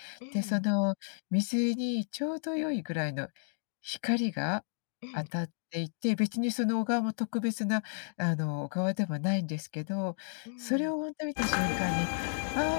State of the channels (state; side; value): silent; right; digital silence